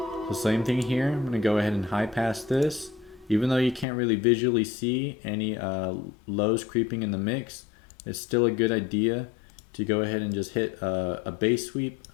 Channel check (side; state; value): right; drops out; at 3.9 s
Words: So same thing here, I'm going to go ahead and high pass this. Even though you can't really visually see any lows creeping in the mix, it's still a good idea to go ahead and just hit a bass sweep,